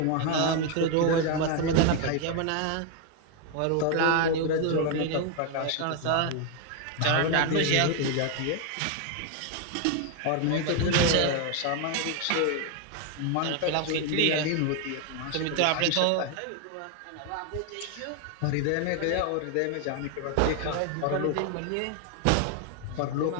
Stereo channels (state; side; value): different; both; correlation 0.01